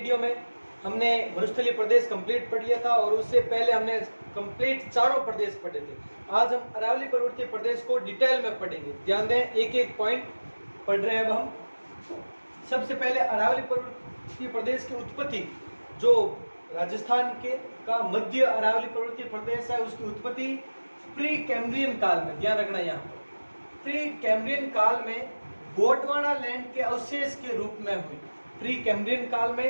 में हमने मरुस्थलीय प्रदेश कंप्लीट पढ़ लिया था और उससे पहले हमने कंप्लीट चारों प्रदेश पढ़े थे। आज हम अरावली पर्वतीय प्रदेश को डिटेल में पढ़ेंगे। ध्यान दें, एक एक पॉइंट पढ़ रहे हैं अब हम। सबसे पहले अरावली पर्वतीय प्रदेश की उत्पत्ति, जो राजस्थान के का मध्य अरावली पर्वतीय प्रदेश है, उसकी उत्पत्ति प्री कैम्ब्रियन काल में, ध्यान रखना यहाँ पर, प्री कैम्ब्रियन काल में गोंडवाना लैंड के अवशेष के रूप में हुई। प्री कैम्ब्रियन काल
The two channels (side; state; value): both; inverted; correlation -1.00